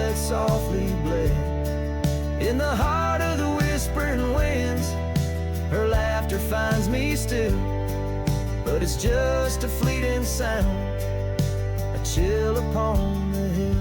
softly bled. In the heart of the whispering winds, her laughter finds me still, but it's just a fleeting sound, a chill upon the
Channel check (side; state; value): both; identical; correlation 1.00